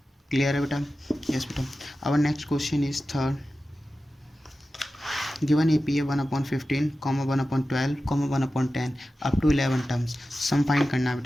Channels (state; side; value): normal; both; correlation 0.94